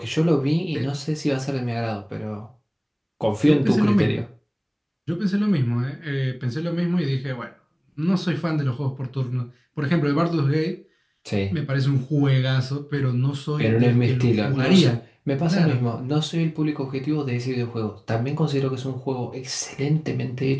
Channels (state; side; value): identical; both; correlation 1.00